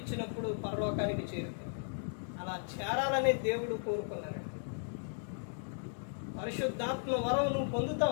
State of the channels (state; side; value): silent; right; digital silence